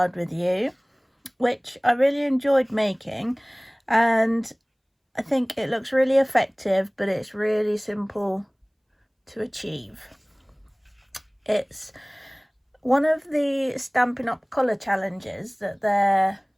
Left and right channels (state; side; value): identical; both; correlation 1.00